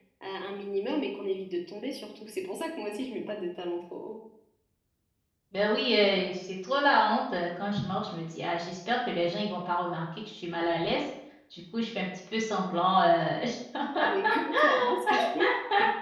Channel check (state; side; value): identical; both; correlation 1.00